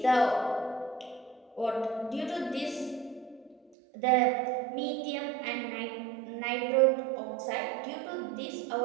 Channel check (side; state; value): left; drops out; at 3.7 s